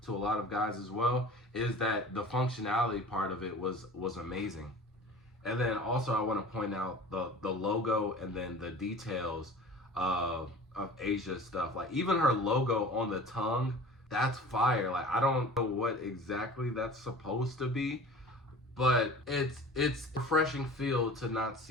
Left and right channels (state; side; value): normal; both; correlation 0.41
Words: to a lot of guys as well, is that the functionality part of it was amazing. And then also I want to point out the logo and then the details of Asia's stuff. Like even her logo on the tongue, that's fire. Like I don't know what exactly that's supposed to be, but it's a refreshing feel to not